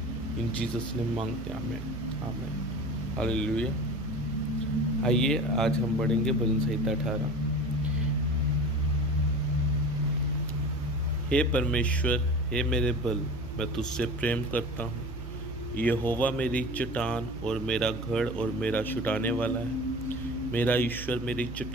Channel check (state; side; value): noise; right; hum, 9 dB below the sound